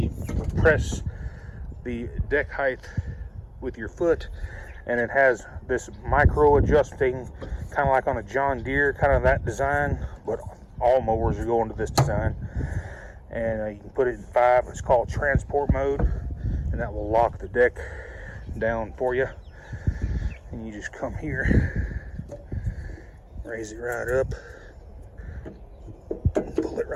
press the deck height with your foot, and it has this micro adjusting, kind of like on a John Deere, kind of that design, but all mowers are going to this design. And you can put it in 5. It's called transport mode, and that will lock the deck down for you. And you just come here, raise it right up, and pull it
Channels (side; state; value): both; identical; correlation 1.00